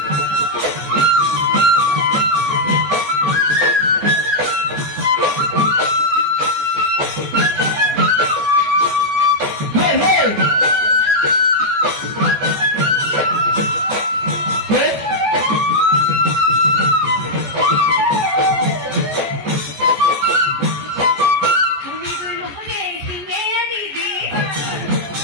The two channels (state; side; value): late; left; 14 ms